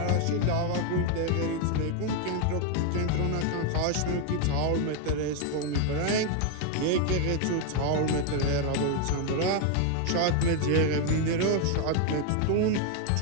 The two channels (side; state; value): both; different; correlation 0.01